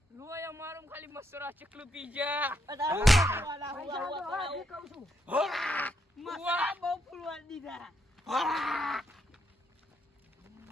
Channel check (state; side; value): normal; both; correlation 0.78